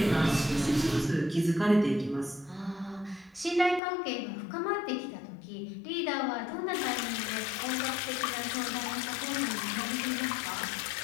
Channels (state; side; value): drops out; right; at 3.8 s